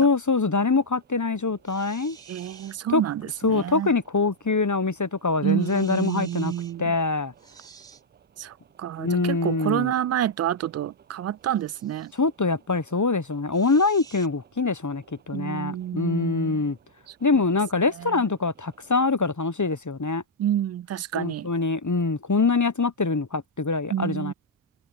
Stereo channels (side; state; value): both; normal; correlation -0.04